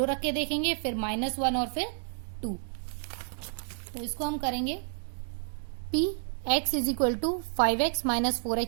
रख के देखेंगे, फिर -1 और फिर 2। तो इसको हम करेंगे p x is equal to 5x minus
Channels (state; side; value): silent; left; digital silence